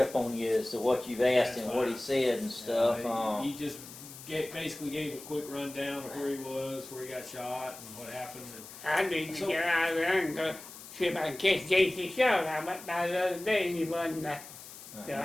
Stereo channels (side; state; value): left; noise; hiss, 15 dB below the sound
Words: on you as to what you've asked That's and what he fine. said and stuff. he just basically gave a quick rundown of where he was, where he got shot, and what happened. And I need to So- get out of there and go see if I can catch J.C. Short. I went by the other day and he wasn't there. So